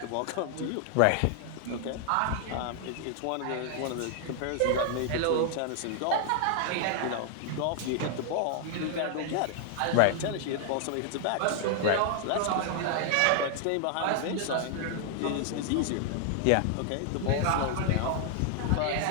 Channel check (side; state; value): both; different; correlation 0.00